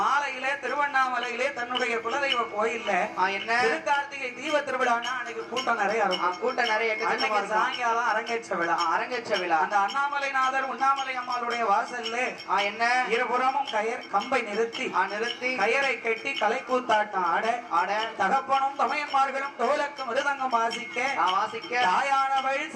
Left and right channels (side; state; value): both; identical; correlation 1.00